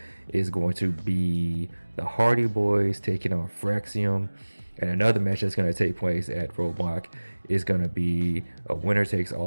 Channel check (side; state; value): both; inverted; correlation -1.00